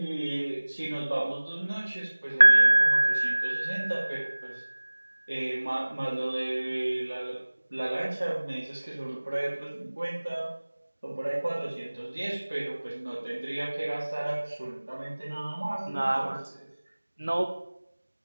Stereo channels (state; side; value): inverted; both; correlation -1.00